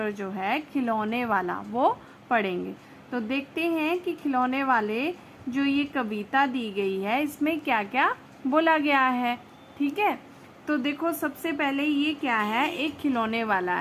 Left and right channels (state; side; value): identical; both; correlation 1.00